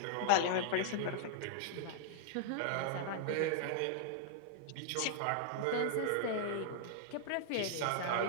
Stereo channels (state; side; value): different; both; correlation -0.01